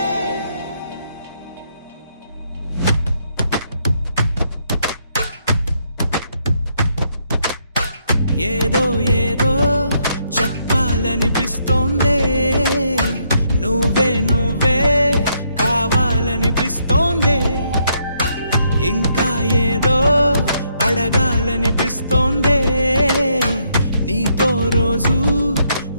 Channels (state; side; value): inverted; both; correlation -0.74